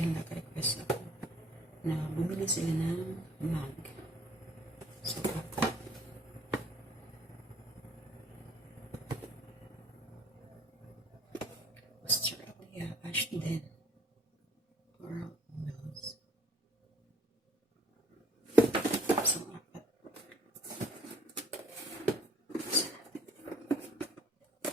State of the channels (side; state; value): both; normal; correlation 0.58